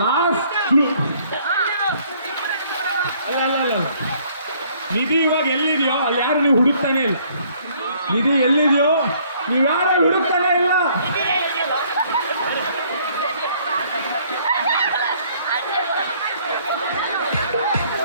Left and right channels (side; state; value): both; inverted; correlation -0.62